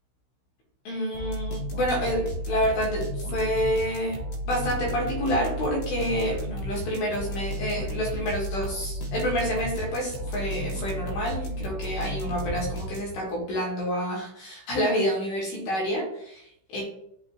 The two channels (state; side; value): late; right; 16 ms